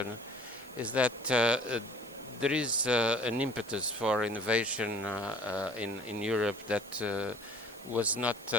is that there is an impetus for innovation in Europe that was not,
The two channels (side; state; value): both; normal; correlation 0.50